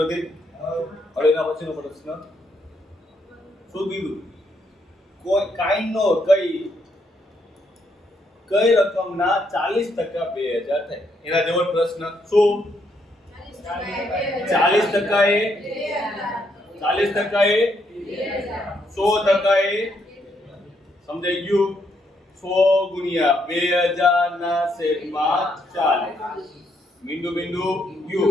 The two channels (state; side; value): normal; both; correlation 0.75